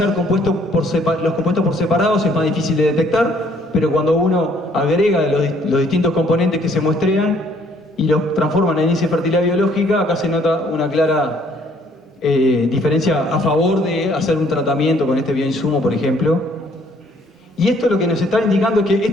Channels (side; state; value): both; normal; correlation 0.63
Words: los compuestos por separados es más difícil de detectar, pero cuando uno agrega los distintos componentes que se muestrean y los transforma en índice de fertilidad biológica, acá se nota una clara diferencia a favor de hacer un tratamiento con este bioinsumo, por ejemplo. Y esto lo que nos está indicando es que